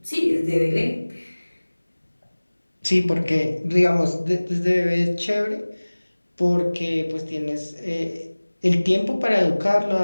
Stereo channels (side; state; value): both; inverted; correlation -1.00